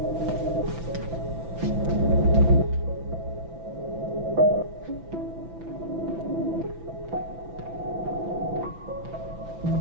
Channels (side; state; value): left; late; 6.0 ms